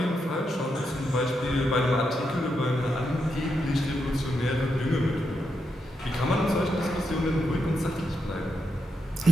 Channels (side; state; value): both; normal; correlation 0.84